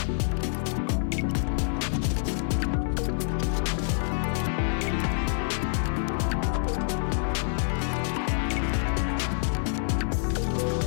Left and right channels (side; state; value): right; silent; 60 dB below the other